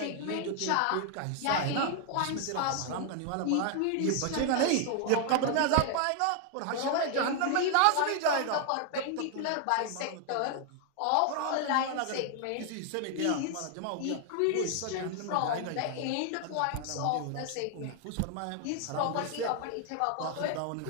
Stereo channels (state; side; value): different; both; correlation 0.00